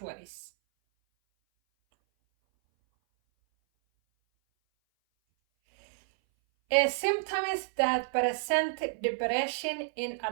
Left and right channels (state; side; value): silent; left; 58 dB below the other